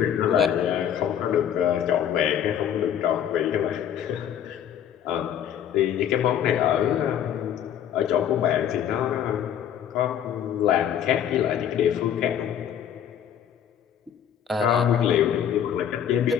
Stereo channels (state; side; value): quieter; right; 9.5 dB